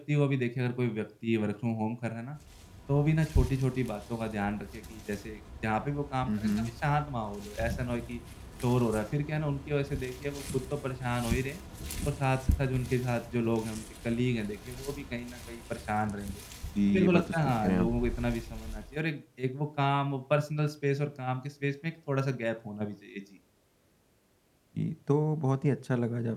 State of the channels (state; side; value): identical; both; correlation 1.00